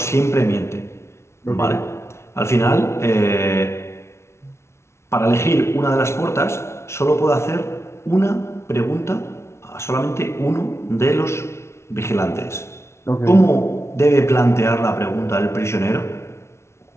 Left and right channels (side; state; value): right; late; 0.13 ms